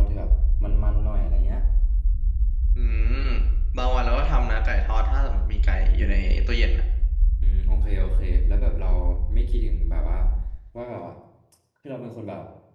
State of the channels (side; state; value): both; identical; correlation 1.00